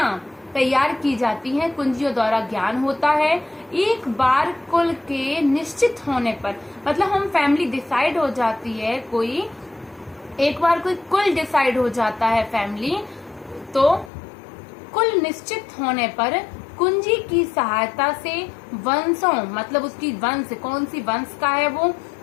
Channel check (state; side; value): drops out; right; at 14.1 s